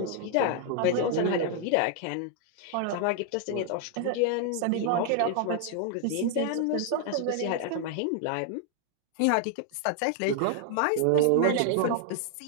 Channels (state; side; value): different; both; correlation 0.00